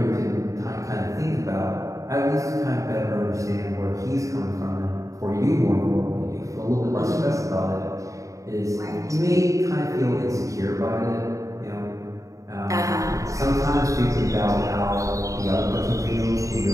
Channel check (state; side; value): late; left; 0.16 ms